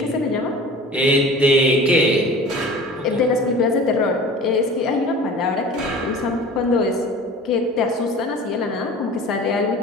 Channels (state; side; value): normal; both; correlation 0.40